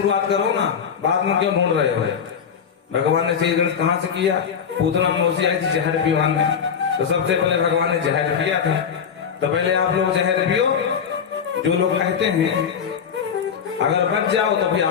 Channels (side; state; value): right; quieter; 7.2 dB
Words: करो ना, बाद में क्यों ढूंढ रहे हो। भगवान ने श्री गणेश कहां से किया, पूतना मौसी आई थी जहर पीवान में, तो सबसे पहले भगवान ने जहर पिया था। तो पहले आप लोग जहर पियो, जो लोग कहते हैं अगर बच जाओ तो फिर